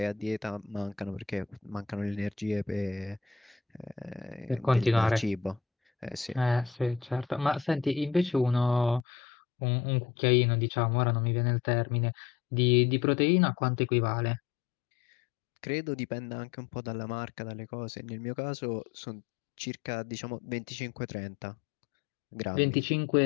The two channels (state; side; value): drops out; right; at 9.1 s